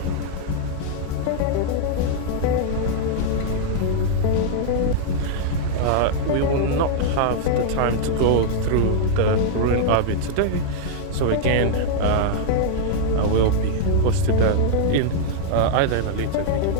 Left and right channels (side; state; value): both; different; correlation -0.01